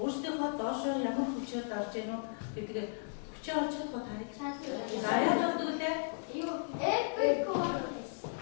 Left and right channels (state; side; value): silent; right; 54 dB below the other